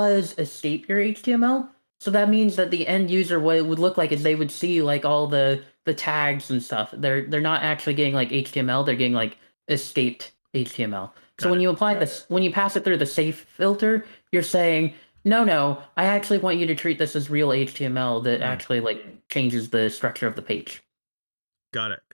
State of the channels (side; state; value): both; inverted; correlation -1.00